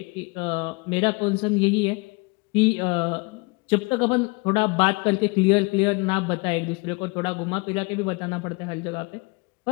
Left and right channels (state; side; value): quieter; right; 28.2 dB